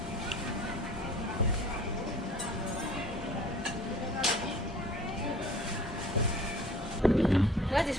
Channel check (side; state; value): both; normal; correlation 0.48